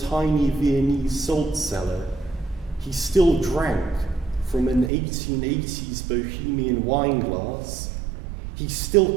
Viennese salt cellar. He still drank from an 1880s Bohemian wine glass. He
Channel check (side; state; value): left; drops out; at 4.9 s